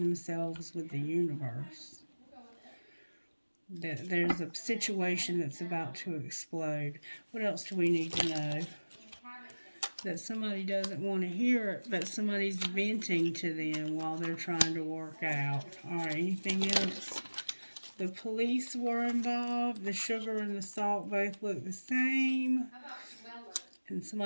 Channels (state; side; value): inverted; both; correlation -1.00